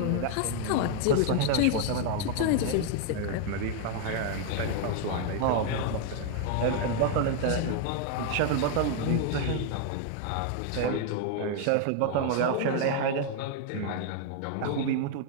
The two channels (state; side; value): different; both; correlation 0.00